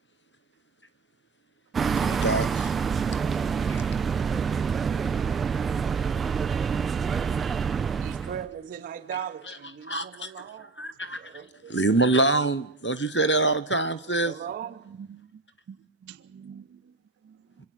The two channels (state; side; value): quieter; left; 4.1 dB